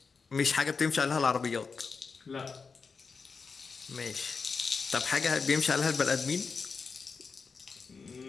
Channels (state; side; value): quieter; right; 5.0 dB